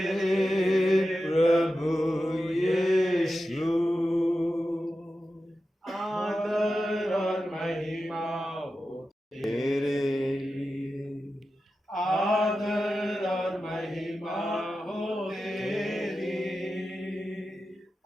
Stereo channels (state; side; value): normal; both; correlation 0.92